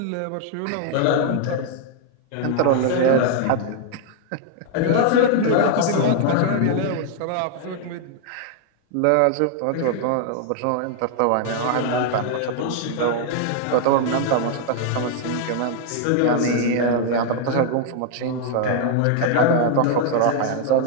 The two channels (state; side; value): different; both; correlation 0.00